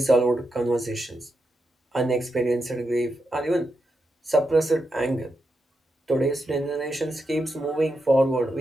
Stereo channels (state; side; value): normal; both; correlation 0.85